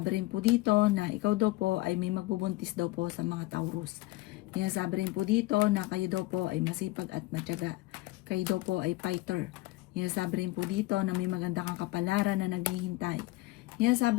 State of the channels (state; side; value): quieter; right; 19.6 dB